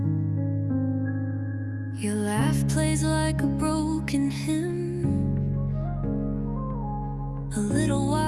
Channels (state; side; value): identical; both; correlation 1.00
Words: Your laugh plays like a broken hymn, a little